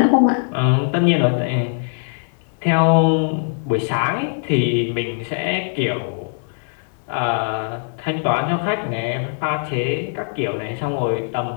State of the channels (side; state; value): right; silent; digital silence